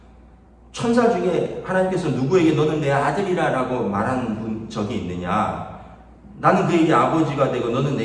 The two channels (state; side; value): identical; both; correlation 1.00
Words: 천사 중에 하나님께서 누구에게 너는 내 아들이라고 말한 적이 있느냐? 나는 그에게 아버지가 되고 너는